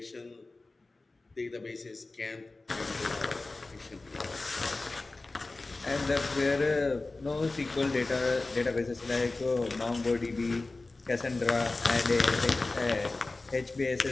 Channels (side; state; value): right; quieter; 3.3 dB